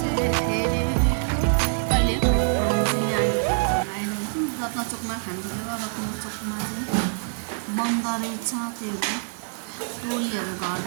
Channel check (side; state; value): left; silent; digital silence